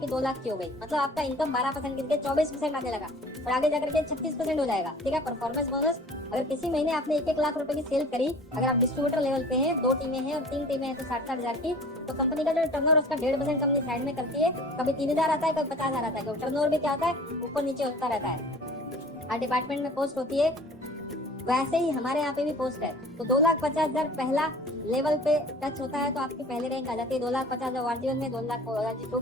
2 लाख की हो गई। मतलब आपका इनकम 12% गिर के 24% आने लगा और आगे जाकर के 36% हो जाएगा। ठीक है, परफॉर्मेंस बोनस अगर किसी महीने आपने 1-1 लाख रुपए की सेल करी, अगर आप डिस्ट्रीब्यूटर लेवल पे हैं, 2 टीमें हैं और 3 टीमें हैं तो 60-60 हजार की, तो कंपनी का जो टर्नओवर उसका 1.5% कंपनी साइड में करती है। कभी 3,000 आता है, कभी 50,000 आता है, क्योंकि टर्नओवर भी क्या आता है, ऊपर नीचे होता रहता है। हर डिपार्टमेंट में पोस्ट होती है, वैसे ही हमारे यहाँ पे भी पोस्ट है। तो 2,50,000 पहला लेवल पे टच होता है तो आपकी पहले रैंक आ जाती है। 2,50,000 ORG1 में, 2,00,000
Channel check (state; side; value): normal; both; correlation 0.45